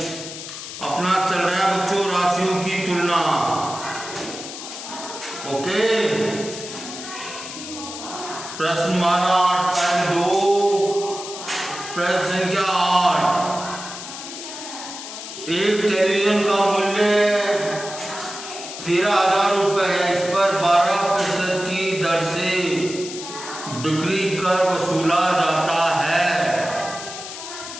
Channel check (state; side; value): noise; left; hiss, 10 dB below the sound